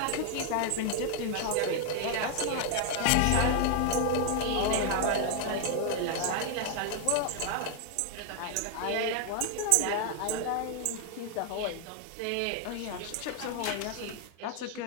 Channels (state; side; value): different; both; correlation 0.00